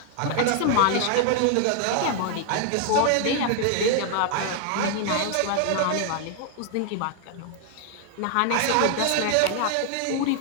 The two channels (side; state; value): both; different; correlation 0.00